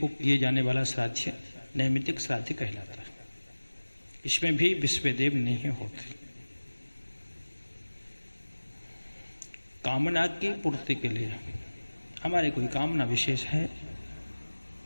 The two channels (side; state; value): both; inverted; correlation -1.00